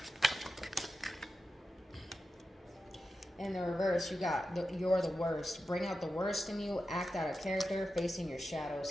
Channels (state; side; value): normal; both; correlation 0.91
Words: In the reverse, you got you're the worst. Bring out the worst in you, act out of character, facing your shadow